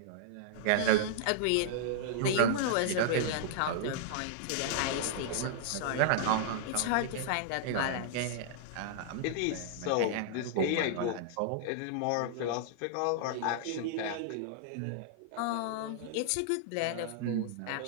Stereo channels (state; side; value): different; both; correlation -0.01